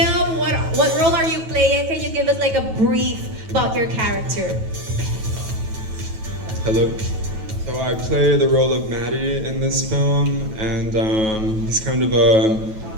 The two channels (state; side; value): late; left; 9.2 ms